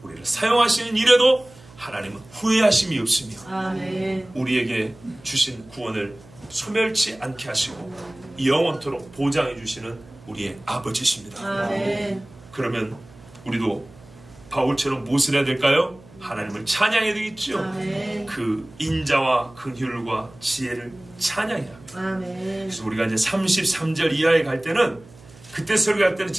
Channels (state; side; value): noise; right; hum, 23 dB below the sound